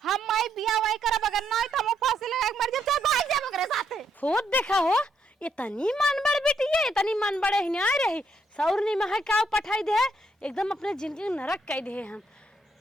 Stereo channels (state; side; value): normal; both; correlation 0.74